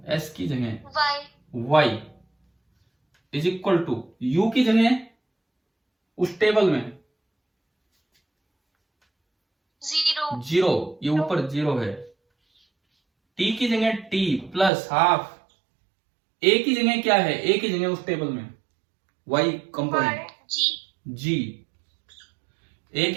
y is equal to u की जगह उस टेबल में 0, ये ऊपर 0 है। t की जगह t प्लस हाफ, a की जगह क्या है? a की जगह उस टेबल में वाई कंपोनेंट जी। ए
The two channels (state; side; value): drops out; left; at 14.7 s